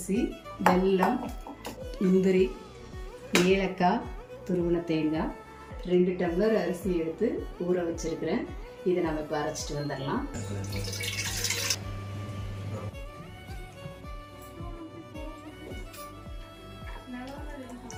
வெல்லம், முந்திரி, ஏலக்காய், துருவின தேங்காய், 2 டம்ளர் அரிசி எடுத்து ஊற வச்சுருக்கிறேன். இதை நம்ம இப்போ அரைச்சிட்டு வந்துடலாம்.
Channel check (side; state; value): both; identical; correlation 1.00